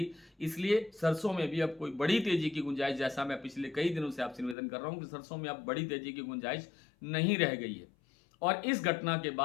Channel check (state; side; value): drops out; right; at 4.5 s